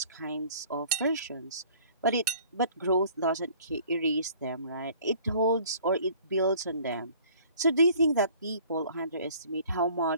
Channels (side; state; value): both; inverted; correlation -0.53